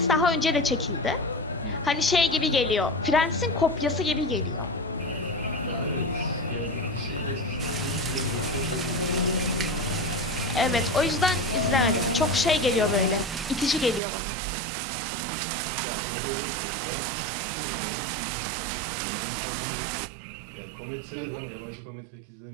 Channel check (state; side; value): drops out; left; at 14.0 s